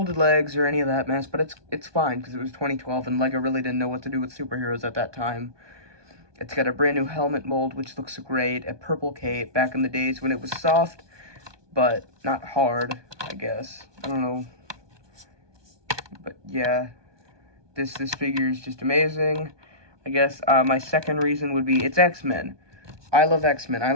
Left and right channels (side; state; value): left; late; 1.2 ms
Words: legs or any of that mess, but it's fine, because it was 2012, and LEGO really didn't know what to do with superheroes at that time. It's got a brand new helmet mold, which looks great, a purple cape, back in the days when it was soft, but not hard, I guess. I don't know. But, yeah, this figure is just amazing. I guess, my second reason would be, it's X-Men. I love X-Men. I